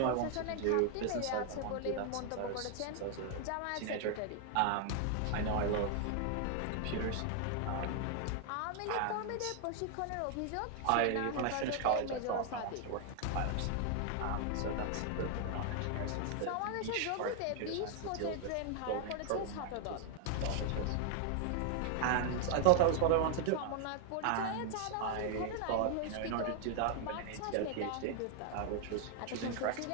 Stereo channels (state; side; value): different; both; correlation 0.00